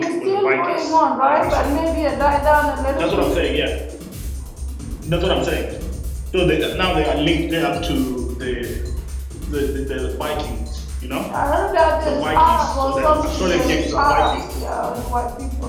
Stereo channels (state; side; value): identical; both; correlation 1.00